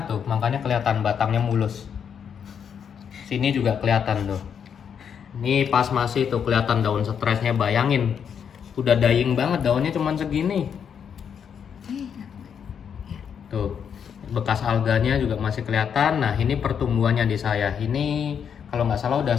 tuh, makanya kelihatan batangnya mulus. Sini juga kelihatan tuh. Ini pas masih tuh kelihatan daun stresnya, bayangin. Udah dying banget, daunnya cuman segini. Tuh, bekas alganya juga masih kelihatan. Nah, ini pertumbuhannya di saya. Ini kalau nggak salah udah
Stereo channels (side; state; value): right; quieter; 7.6 dB